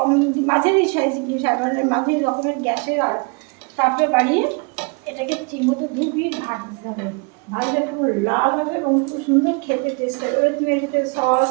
মাঝারি সাইজ, মাঝারি রকমের গ্যাসের আর তাপটা বাড়িয়ে এটাকে ঠিকমতো দুই পিঠ ভাজতে হবে। ভাজলে পুরো লাল হবে এবং খুব সুন্দর খেতে টেস্ট হবে। এবার তুমি এটাতে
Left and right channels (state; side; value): quieter; left; 32.1 dB